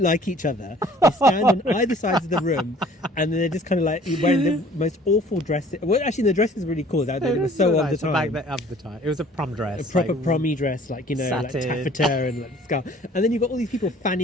like each other. They stand on either sides of the room, and then they're just kind of like wearing the most awful dresses. Well, actually, the dress is really cool. It was so of the time. Of the time, it was a prom dress, a proper prommy dress, like like taffeta and like scarf. And then you've got all these people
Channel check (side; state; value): both; normal; correlation 0.53